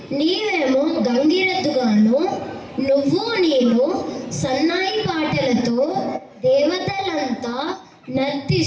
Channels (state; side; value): identical; both; correlation 1.00